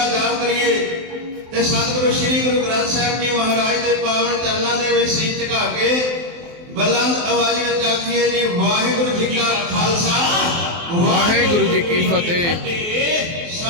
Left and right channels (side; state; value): left; late; 23 ms